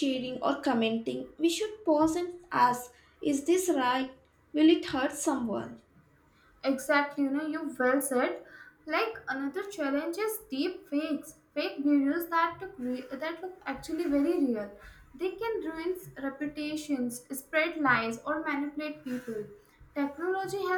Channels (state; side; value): identical; both; correlation 1.00